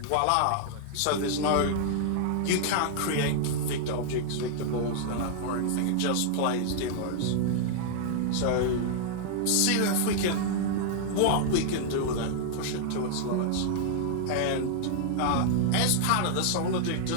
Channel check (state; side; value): different; both; correlation -0.01